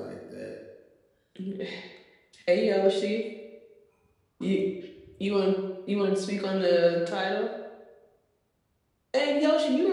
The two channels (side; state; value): both; identical; correlation 1.00